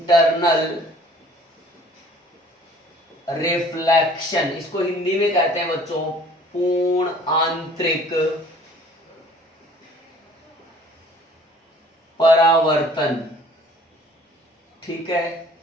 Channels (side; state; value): both; normal; correlation 0.53